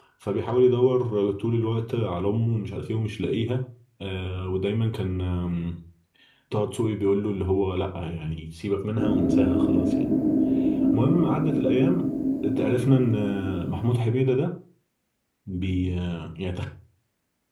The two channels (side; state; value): both; identical; correlation 1.00